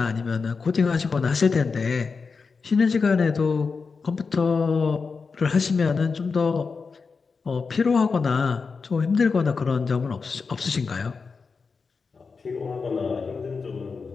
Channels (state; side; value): quieter; right; 4.9 dB